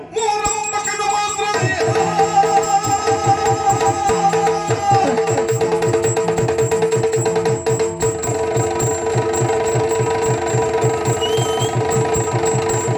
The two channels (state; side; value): identical; both; correlation 1.00